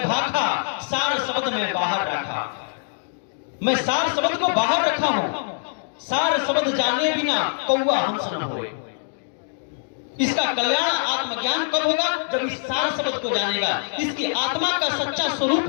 भाखा, सार शब्द में बाहर रखा। मैं सार शब्द को बाहर रखा हूं, सार शब्द जाने बिना कौवा हंस न होए। इसका कल्याण आत्मज्ञान कब होगा? जब इस सार शब्द को जानेगा। इसकी आत्मा का सच्चा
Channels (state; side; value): silent; right; digital silence